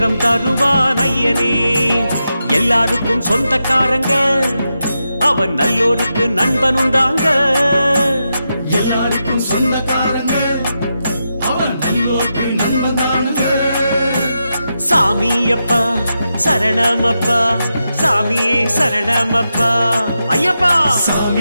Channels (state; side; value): inverted; both; correlation -0.87